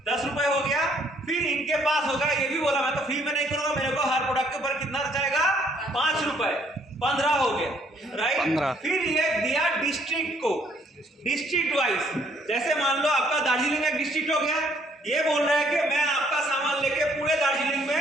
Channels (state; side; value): normal; both; correlation 0.65